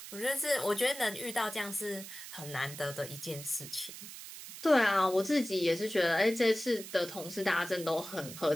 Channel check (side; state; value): right; noise; hiss, 12 dB below the sound